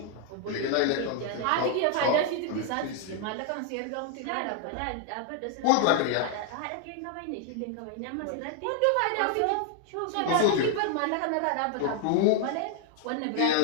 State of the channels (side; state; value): both; different; correlation 0.00